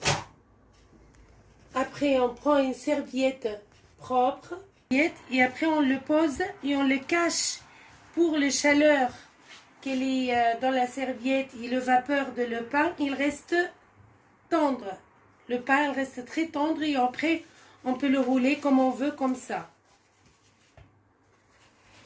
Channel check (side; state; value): both; identical; correlation 1.00